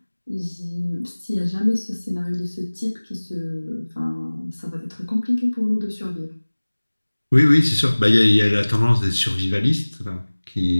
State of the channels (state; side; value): inverted; both; correlation -1.00